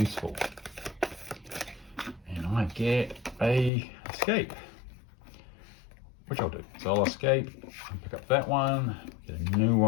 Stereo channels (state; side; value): drops out; right; at 3.7 s